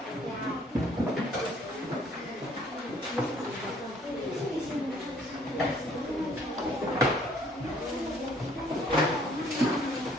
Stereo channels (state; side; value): normal; both; correlation 0.61